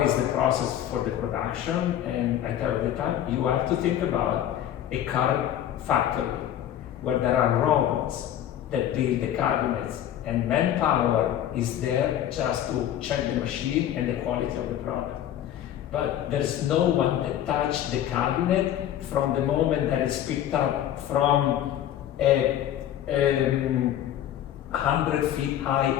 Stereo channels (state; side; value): quieter; right; 11.3 dB